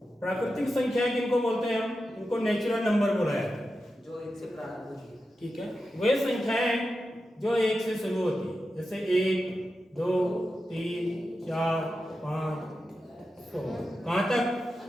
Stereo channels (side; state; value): both; normal; correlation 0.90